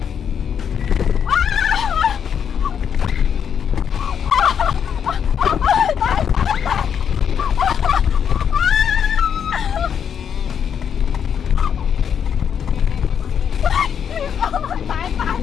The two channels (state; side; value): quieter; right; 7.9 dB